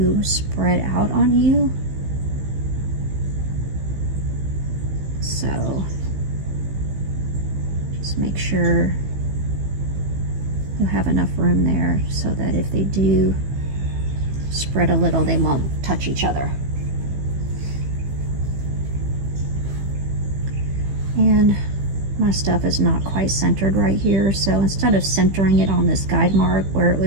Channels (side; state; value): left; late; 15 ms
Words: spread out on you. So just make sure you have enough room there so that if they do spread a little, they won't touch each other. And my stuff is not quite centered right here, so instead of centering it on this guide mark where it